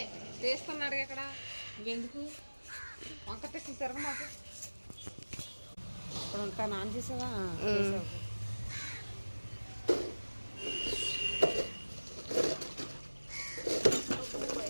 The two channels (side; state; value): both; inverted; correlation -1.00